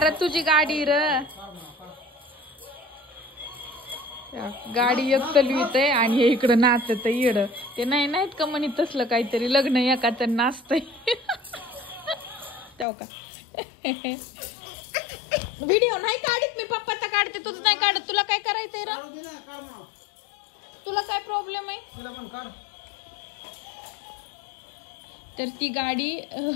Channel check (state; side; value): drops out; right; at 12.9 s